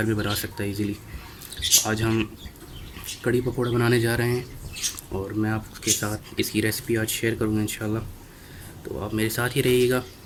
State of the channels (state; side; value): identical; both; correlation 1.00